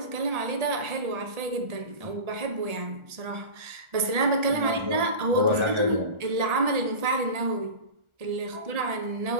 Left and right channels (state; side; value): late; left; 1.4 ms